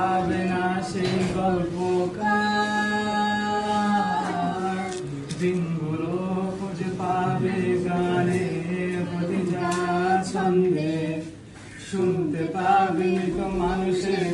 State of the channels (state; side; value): identical; both; correlation 1.00